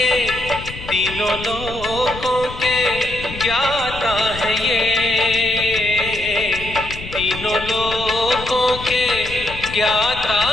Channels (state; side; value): noise; left; rumble, 12 dB below the sound